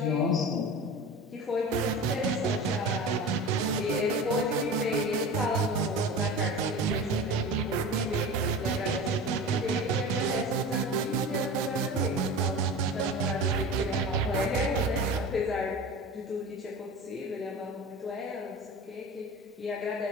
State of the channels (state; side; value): normal; both; correlation 0.33